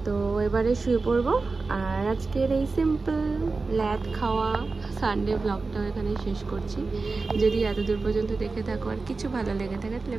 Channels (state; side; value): quieter; left; 3.9 dB